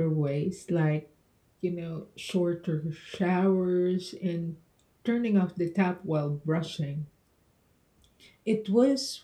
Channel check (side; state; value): both; identical; correlation 1.00